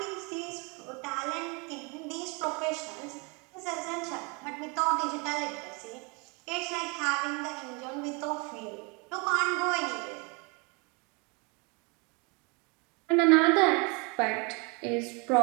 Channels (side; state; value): left; quieter; 31.0 dB